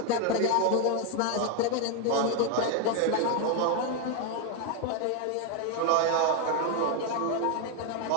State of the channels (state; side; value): different; both; correlation 0.01